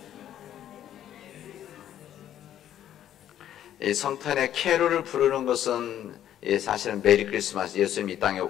이 성탄의 캐롤을 부르는 것은 사실은 메리 크리스마스, 예수님 이 땅에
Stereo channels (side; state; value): right; quieter; 11.1 dB